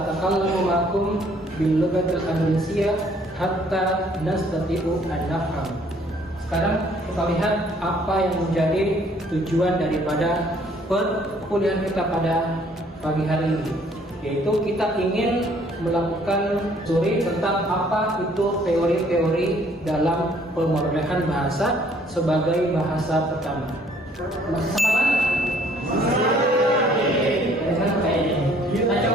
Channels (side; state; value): both; normal; correlation 0.61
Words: ma'akum bil lughatil indonesia hatta nastati'u an nafham. Sekarang kita lihat apa yang menjadi tujuan daripada perkuliahan kita pada pagi hari ini, yaitu kita ingin melakukan studi tentang apa itu teori-teori dalam pemrolehan bahasa sebagai bahasa pertama. Masih sama kan? Kita